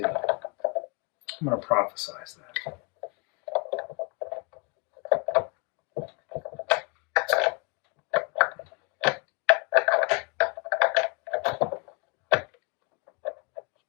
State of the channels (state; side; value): quieter; right; 32.5 dB